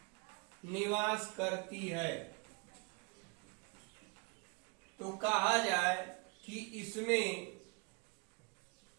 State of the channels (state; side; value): quieter; left; 31.2 dB